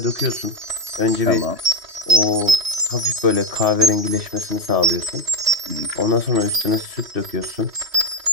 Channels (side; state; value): left; late; 3.1 ms